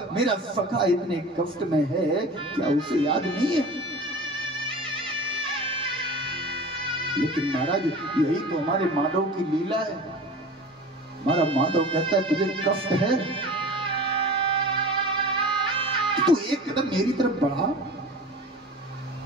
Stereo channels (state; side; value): normal; both; correlation 0.37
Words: मेरा सखा इतने कष्ट में है? क्या उसे याद नहीं है? लेकिन महाराज, यही तो हमारे माधव की लीला है। हमारा माधव कहता है तुझे कष्ट है तो एक कदम मेरी तरफ बढ़ा,